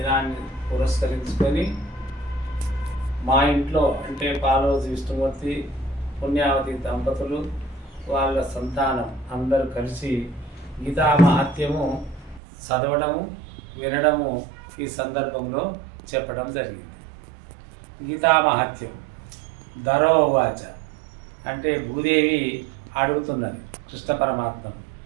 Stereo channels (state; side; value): drops out; left; at 12.4 s